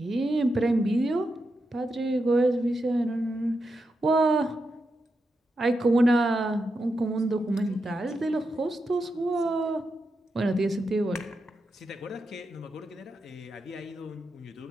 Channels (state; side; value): normal; both; correlation 0.86